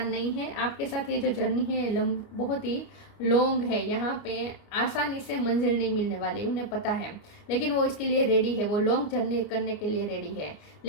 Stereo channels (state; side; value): late; right; 29 ms